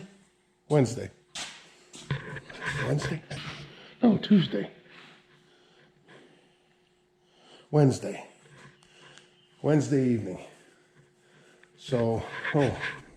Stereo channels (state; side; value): identical; both; correlation 1.00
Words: Wednesday? No, Tuesday. Wednesday evening. So,